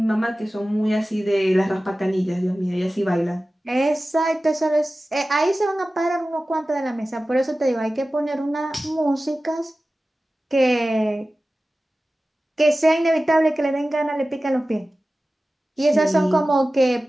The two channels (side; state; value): both; normal; correlation 0.96